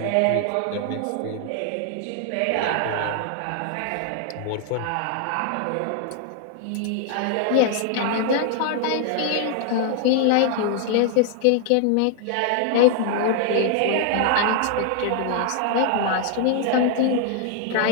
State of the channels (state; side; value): different; both; correlation 0.00